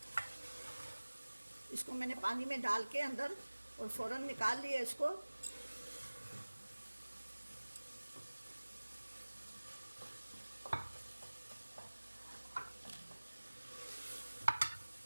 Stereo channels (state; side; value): inverted; both; correlation -1.00